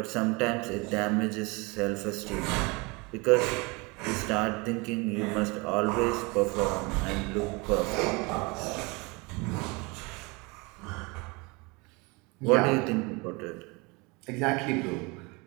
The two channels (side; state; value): left; quieter; 27.2 dB